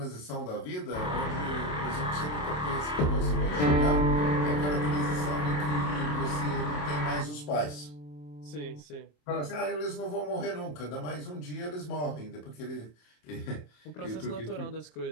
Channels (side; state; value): right; late; 27 ms